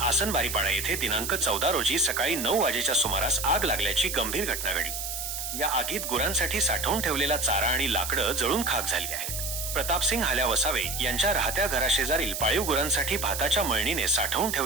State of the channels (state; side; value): noise; right; hiss, 5 dB below the sound